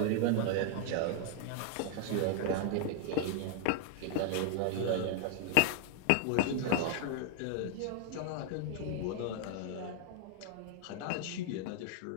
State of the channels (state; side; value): different; both; correlation 0.00